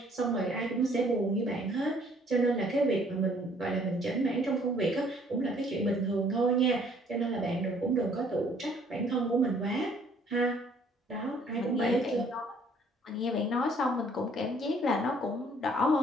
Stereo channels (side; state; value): both; normal; correlation 0.61